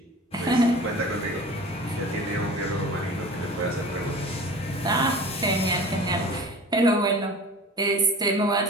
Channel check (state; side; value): normal; both; correlation 0.39